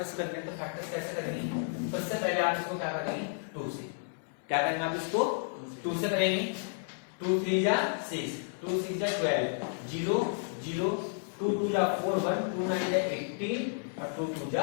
करने हैं। तो फैक्टर्स कैसे करेंगे, सबसे पहले आप इसको क्या करेंगे, 2 से क्या करेंगे, आप इसको 2 से करेंगे। 2 3 जा 6, 2 6 जा 12, 0 0, 2 2 जा 4 1, 2 9 जा 18 और 2 2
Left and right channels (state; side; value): silent; right; 57 dB below the other